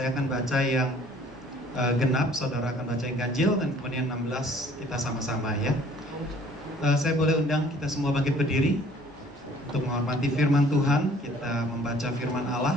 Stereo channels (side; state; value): both; normal; correlation 0.55